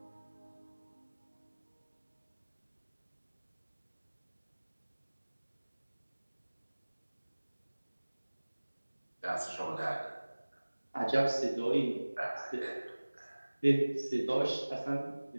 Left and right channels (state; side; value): inverted; both; correlation -1.00